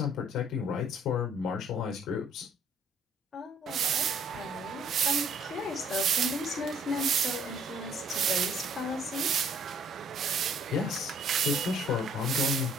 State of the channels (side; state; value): both; normal; correlation 0.61